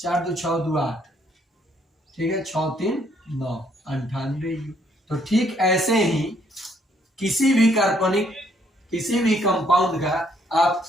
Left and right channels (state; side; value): normal; both; correlation 0.68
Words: 2 6 2 8, ठीक है, 6 3 9, 98 यू। तो ठीक ऐसे ही किसी भी कार्बनिक, किसी भी कंपाउंड का आप